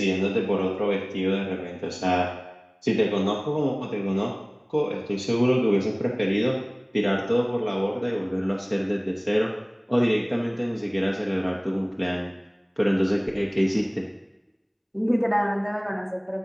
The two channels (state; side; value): identical; both; correlation 1.00